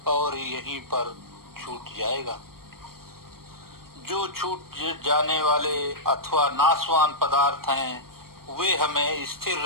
और यहीं पर छूट जाएगा। जो छूट जाने वाले अथवा नाशवान पदार्थ हैं वे हमें स्थिर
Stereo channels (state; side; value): late; left; 0.93 ms